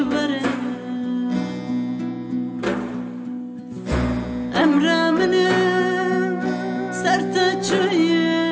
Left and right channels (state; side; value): identical; both; correlation 1.00